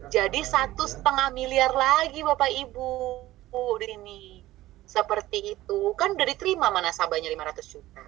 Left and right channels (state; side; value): quieter; left; 16.1 dB